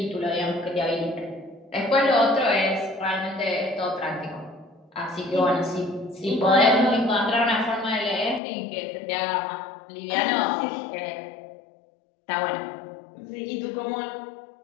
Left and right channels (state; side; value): drops out; right; at 8.4 s